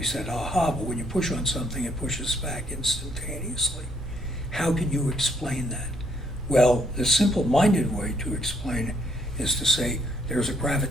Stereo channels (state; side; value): normal; both; correlation 0.69